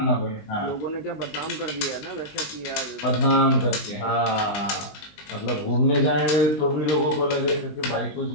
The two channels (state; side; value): late; right; 20 ms